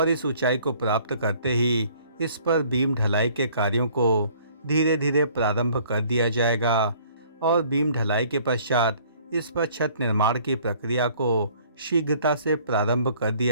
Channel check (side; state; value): both; inverted; correlation -0.57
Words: इस ऊंचाई को प्राप्त करते ही इस पर बीम ढलाई के कार्यों को धीरे धीरे प्रारंभ कर दिया जाएगा। और बीम ढलाई के पश्चात इस पर छत निर्माण की प्रक्रिया को शीघ्रता से प्रारंभ कर